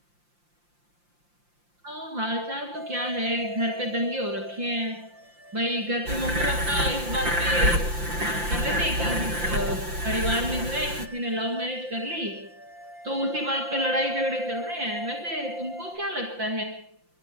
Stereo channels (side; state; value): left; late; 5.7 ms